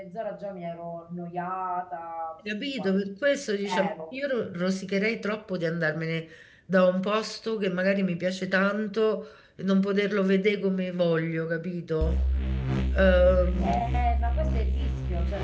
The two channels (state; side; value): identical; both; correlation 1.00